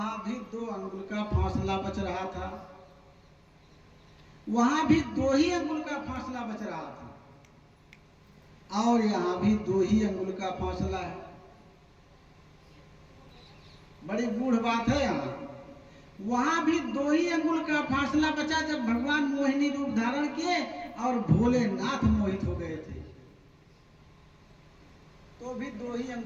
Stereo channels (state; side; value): identical; both; correlation 1.00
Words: भी 2 अंगुल का फासला बच रहा था, वहां भी 2 ही अंगुल का फासला बच रहा था, और यहाँ भी 2 ही अंगुल का फासला है। बड़ी गूढ़ बात है यहाँ। वहां भी 2 ही अंगुल का फासला बचा जब भगवान मोहिनी रूप धारण किए और भोलेनाथ मोहित हो गए थे, तो भी 2 ही